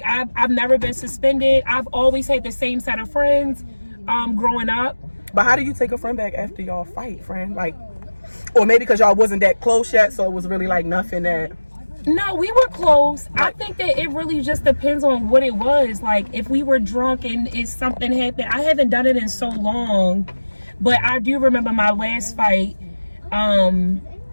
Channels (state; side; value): inverted; both; correlation -1.00